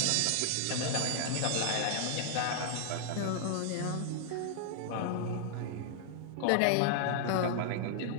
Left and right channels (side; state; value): both; different; correlation 0.00